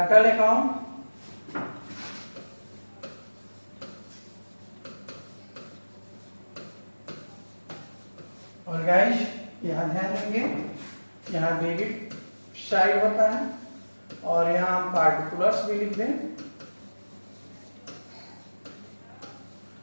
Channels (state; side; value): inverted; both; correlation -1.00